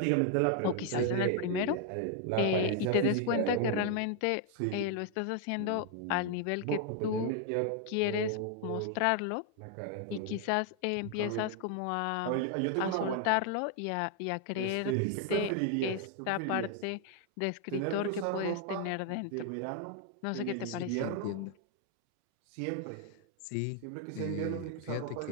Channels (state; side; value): different; both; correlation 0.00